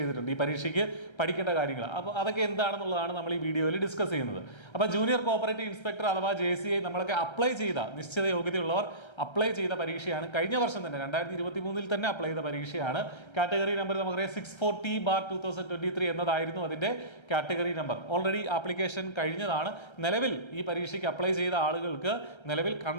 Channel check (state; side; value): late; right; 1.3 ms